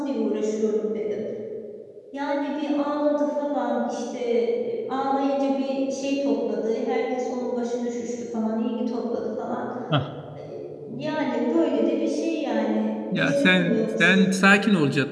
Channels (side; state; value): both; identical; correlation 1.00